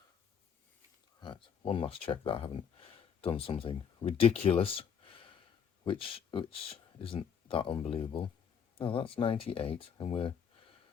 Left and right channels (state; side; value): quieter; right; 7.4 dB